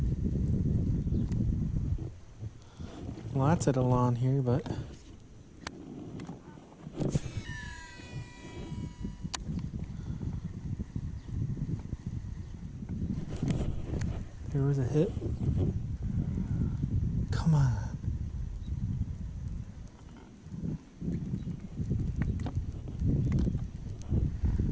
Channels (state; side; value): identical; both; correlation 1.00